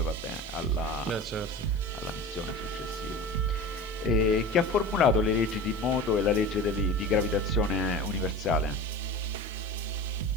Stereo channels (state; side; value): noise; left; hiss, 28 dB below the sound